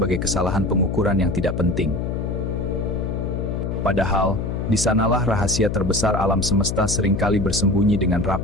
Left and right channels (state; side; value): noise; left; hum, 2 dB below the sound